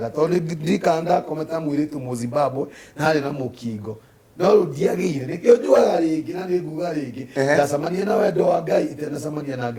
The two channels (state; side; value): identical; both; correlation 1.00